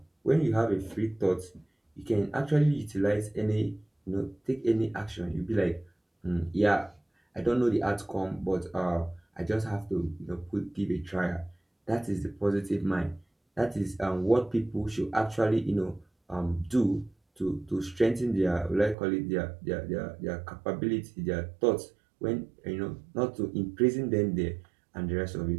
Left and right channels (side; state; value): left; drops out; at 18.9 s